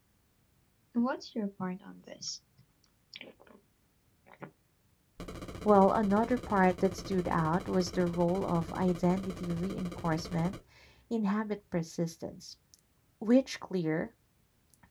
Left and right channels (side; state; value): both; identical; correlation 1.00